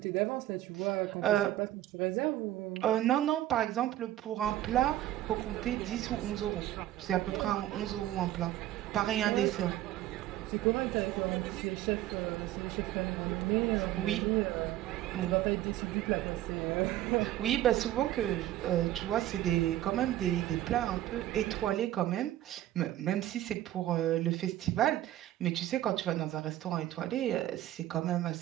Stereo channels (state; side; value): quieter; left; 13.8 dB